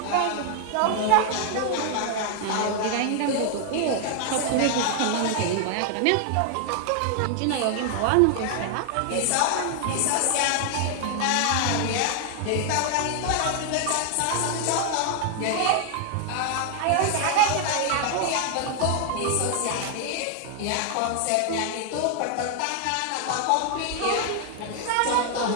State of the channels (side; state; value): both; different; correlation 0.00